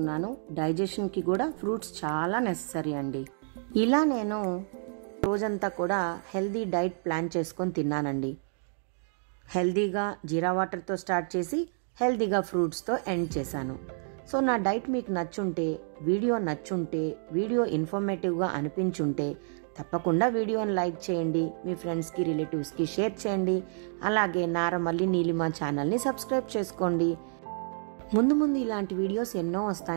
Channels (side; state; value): left; silent; digital silence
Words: డైజెషన్కి కూడా ఫ్రూట్స్ చాలా నెససరీ అండి. ఇలా నేను రోజంతా కూడా హెల్దీ డైట్ ప్లాన్ చేసుకొని తిన్నానండి. హెల్దీగా జీరా వాటర్తో స్టార్ట్ చేసి హెల్దీగా ఫ్రూట్స్తో ఎండ్ చేశాను. సో నా డైట్ మీకు నచ్చుంటే, వీడియో ఇన్ఫర్మేటివ్గా అనిపించుంటే తప్పకుండా వీడియోని లైక్ చేయండి, మీ ఫ్రెండ్స్కి, రిలేటివ్స్కి షేర్ చేయండి. అలాగే నారమల్లి నీలిమ ఛానల్ని సబ్స్క్రైబ్ చేసుకోండి. ముందు ఇలాంటి వీడియోస్ ఎన్నో